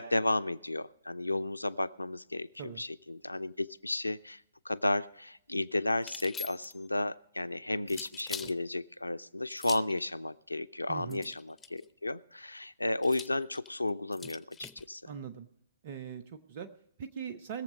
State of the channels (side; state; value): both; inverted; correlation -0.92